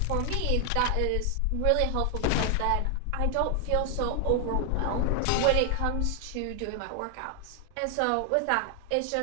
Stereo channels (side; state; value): both; different; correlation 0.00